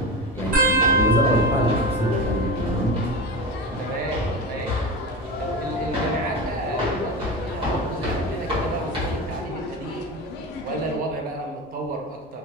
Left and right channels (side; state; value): both; normal; correlation 0.25